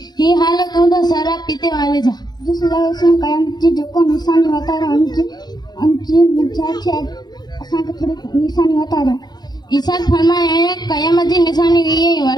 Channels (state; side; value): late; right; 0.20 ms